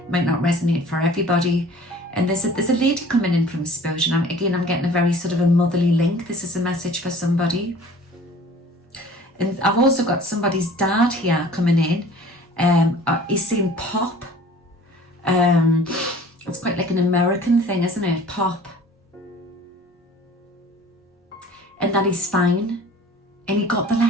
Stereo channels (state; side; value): normal; both; correlation 0.47